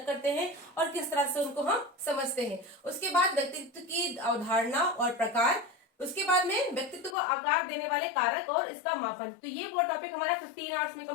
करते हैं और किस तरह से उनको हम समझते हैं। उसके बाद व्यक्तित्व की अवधारणा और प्रकार, उसके बाद में व्यक्तित्व को आकार देने वाले कारक और इसका मापन। तो ये वो टॉपिक हमारा 15 आवर्स में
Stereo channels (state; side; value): drops out; right; at 7.2 s